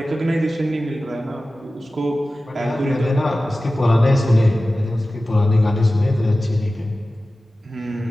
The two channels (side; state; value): both; normal; correlation 0.95